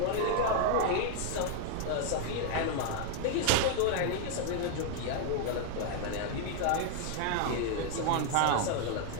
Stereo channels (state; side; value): different; both; correlation 0.00